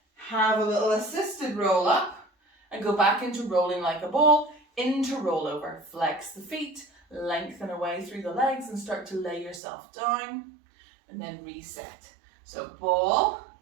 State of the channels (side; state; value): left; drops out; at 9.6 s